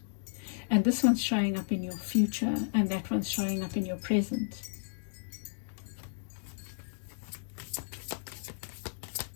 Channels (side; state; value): right; silent; digital silence